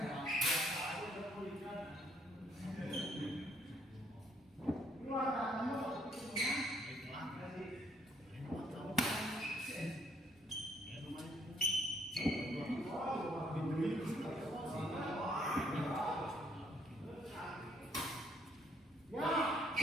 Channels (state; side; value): normal; both; correlation 0.67